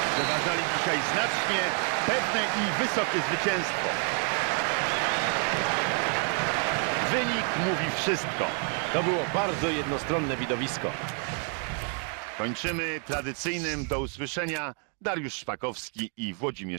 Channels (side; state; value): left; quieter; 39.2 dB